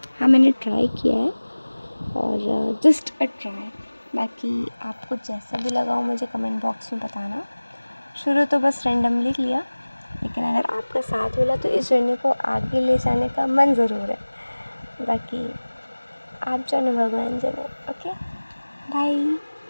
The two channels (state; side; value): inverted; both; correlation -1.00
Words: हाँ मैंने ट्राई किया है और जस्ट अ ट्राई। बाकी आपको जैसा भी लगा हो मुझे कमेंट बॉक्स में बताना। शुरू तो बस रैंडमली किया, लेकिन अगर आपका साथ मिला तो इस जर्नी को आगे ले जाने का मन ज़रूर है। बाकी आप जानो भगवान जाने। Okay bye,